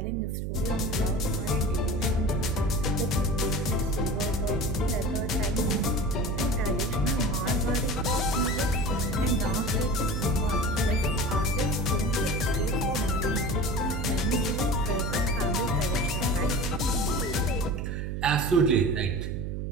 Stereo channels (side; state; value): right; noise; hum, 3 dB below the sound